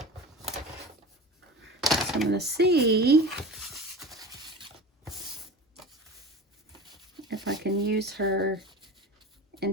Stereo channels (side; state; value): both; normal; correlation 0.33